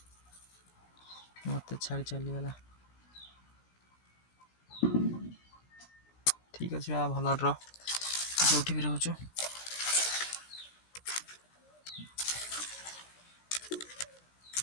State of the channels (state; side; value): late; right; 17 ms